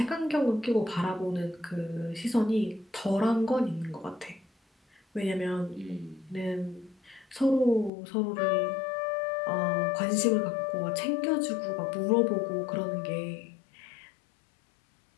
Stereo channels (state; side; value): drops out; right; at 7.9 s